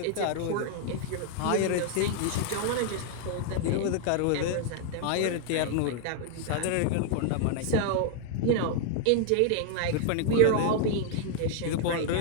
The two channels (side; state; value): both; different; correlation 0.00